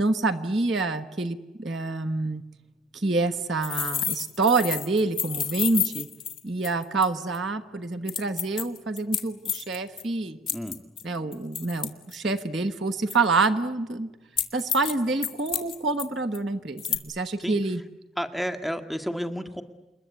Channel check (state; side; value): normal; both; correlation 0.50